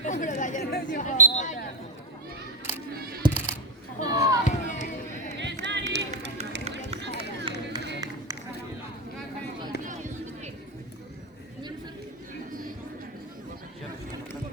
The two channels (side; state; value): both; normal; correlation 0.08